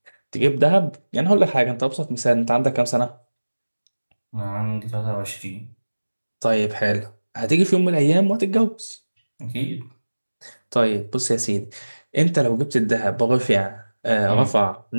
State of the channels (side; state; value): both; inverted; correlation -1.00